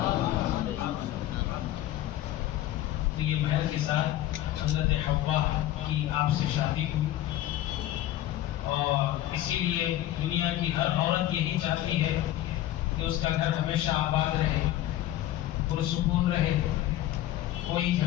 تو یہ مہر کے ساتھ حضرت حوا کی آپ سے شادی ہوئی، اور اسی لیے دنیا کی ہر عورت یہی چاہتی ہے کہ اس کا گھر ہمیشہ آباد رہے، پرسکون رہے، کوئی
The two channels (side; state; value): right; quieter; 13.8 dB